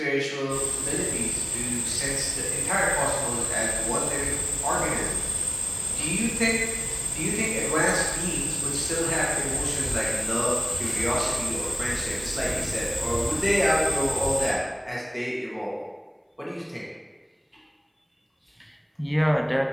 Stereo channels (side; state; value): both; identical; correlation 1.00